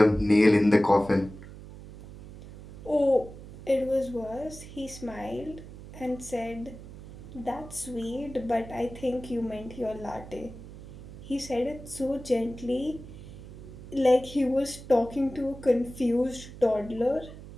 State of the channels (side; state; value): right; noise; hum, 15 dB below the sound